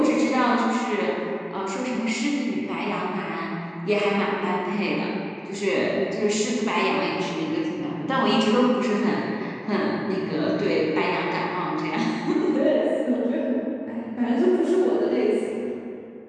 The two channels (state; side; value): identical; both; correlation 1.00